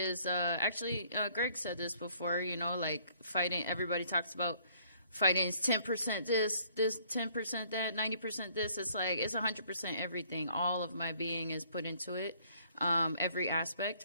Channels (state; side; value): inverted; both; correlation -0.62